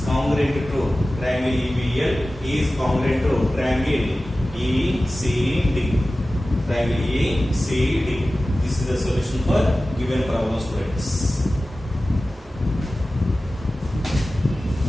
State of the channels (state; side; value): normal; both; correlation 0.96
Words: congruent to triangle EBL is congruent to triangle ECD. Triangle ECD. This is the solution for given problem, students.